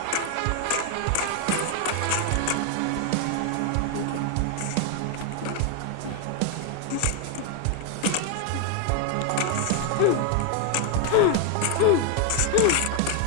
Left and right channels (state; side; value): different; both; correlation 0.01